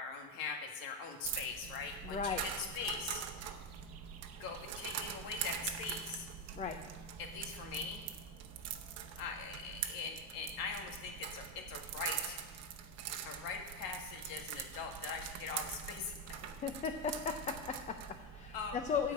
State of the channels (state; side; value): normal; both; correlation 0.08